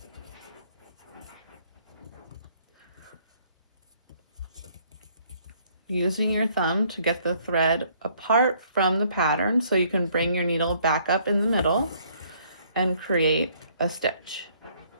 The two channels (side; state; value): both; inverted; correlation -0.63